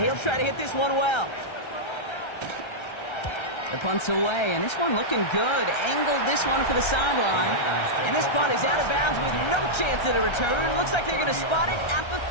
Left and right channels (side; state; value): right; late; 1.3 ms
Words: he'll try to hit this one well. The punt's away, and this one looking good. Angled this one for the sideline. And this punt is out of bounds with no chance at a return. Looks like they're going to spot it at the